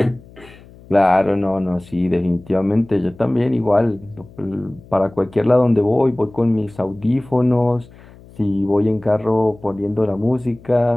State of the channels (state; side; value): noise; left; hum, 23 dB below the sound